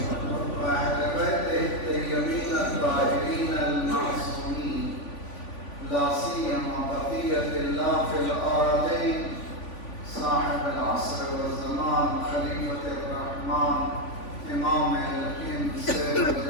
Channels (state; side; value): late; right; 3.5 ms